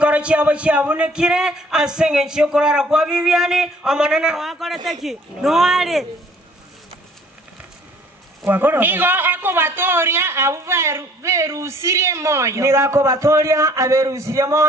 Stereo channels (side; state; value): both; normal; correlation 0.57